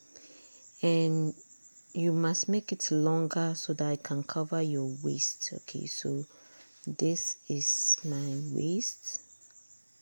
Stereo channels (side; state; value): both; inverted; correlation -1.00